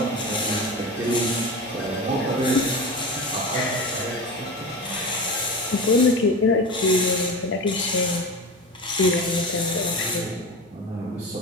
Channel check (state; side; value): normal; both; correlation 0.27